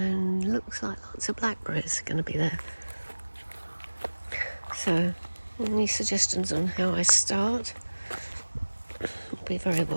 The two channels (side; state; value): both; inverted; correlation -1.00